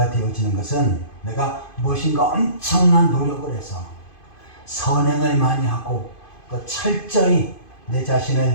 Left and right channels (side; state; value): right; late; 2.5 ms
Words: 되어지는 것은 내가 무엇인가 엄청난 노력을 해서 선행을 많이 하고 또 철저히 내